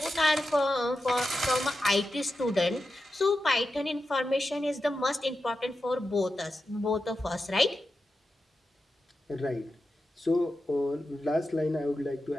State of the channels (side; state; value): both; normal; correlation 0.91